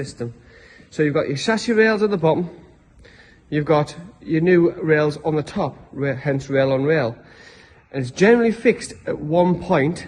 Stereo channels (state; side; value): identical; both; correlation 1.00